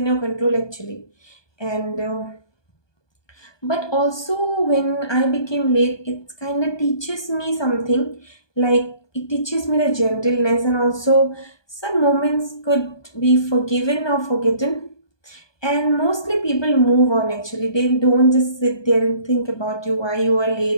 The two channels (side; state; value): right; late; 1.2 ms